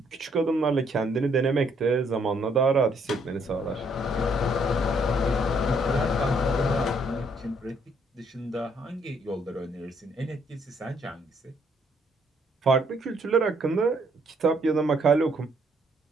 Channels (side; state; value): both; normal; correlation 0.68